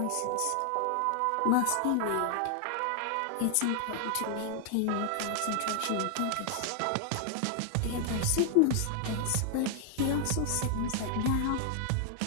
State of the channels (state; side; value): different; both; correlation 0.00